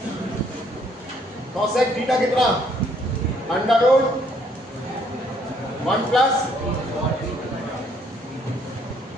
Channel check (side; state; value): both; normal; correlation 0.66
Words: कोसेक थीटा कितना, अंडर रूट 1 प्लस,